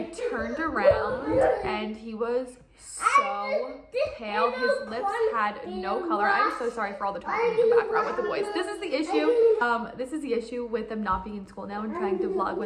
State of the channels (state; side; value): identical; both; correlation 1.00